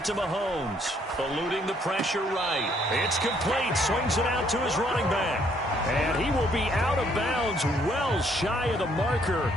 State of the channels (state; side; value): normal; both; correlation 0.67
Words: to Mahomes. Eluding the pressure right. It's complete. Swings it out to his running back. And he will be out of bounds well shy of the marker.